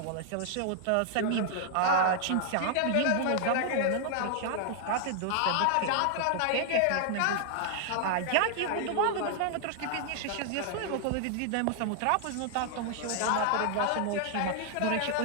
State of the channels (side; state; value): both; different; correlation 0.00